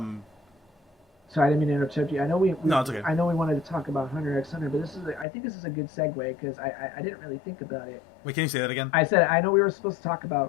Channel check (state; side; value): drops out; right; at 5.2 s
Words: Sorry, I didn't mean to interrupt you. I know no, it's okay. I know we wanted to talk about Hunter x Hunter, but I think this is a good segue because I didn't really think about it. Wait, can you say that again? I said I know we were supposed to talk